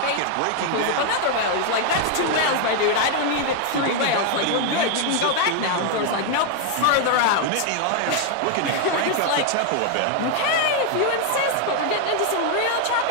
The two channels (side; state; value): both; different; correlation 0.00